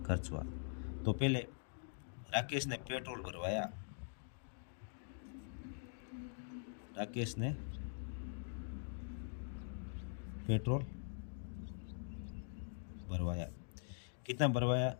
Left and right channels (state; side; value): silent; right; digital silence